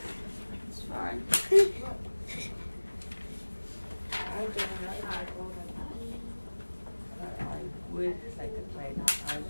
It's fine. would like to play, not I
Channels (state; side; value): inverted; both; correlation -1.00